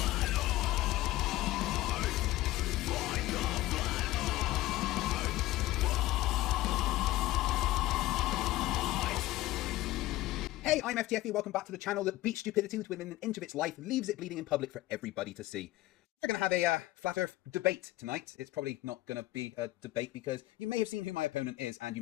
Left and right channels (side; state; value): right; quieter; 17.0 dB